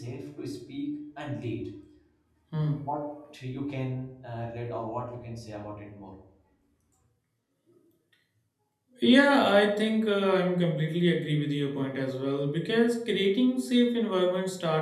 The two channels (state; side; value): identical; both; correlation 1.00